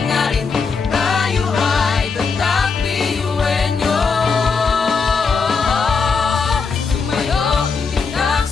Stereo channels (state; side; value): quieter; right; 5.1 dB